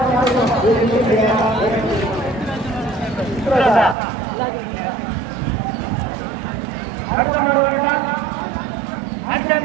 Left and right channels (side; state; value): left; drops out; at 4.0 s